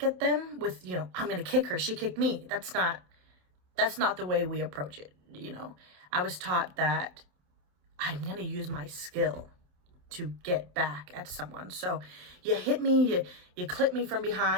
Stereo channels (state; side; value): late; left; 28 ms